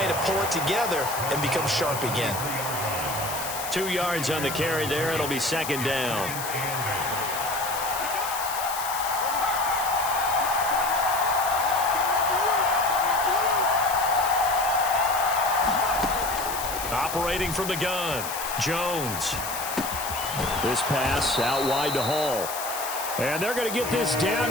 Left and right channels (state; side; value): noise; left; hiss, 7 dB below the sound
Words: to pull it together and become sharp again? 2 yards on the carry there. It'll be 2nd down. Operating from the gun, Jones. This pass out wide to Hall. And they're going to get this down